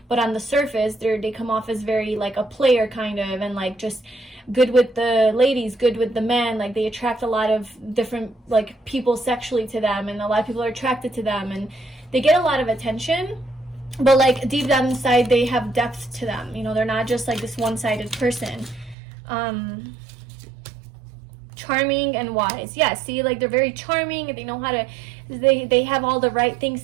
But on the surface, they come off as very like a player kind of, and like just good with the ladies, good with the men. Like they attract a lot of different like people sexually to them, and a lot of people are attracted to them, and they get a lot of attention. But like deep down inside, they have depth to them. You know, they're not just like this one-sided person. Charming and wise. Yeah, see, like they're very charming, and they know how to, they have all the right things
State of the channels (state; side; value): drops out; left; at 18.9 s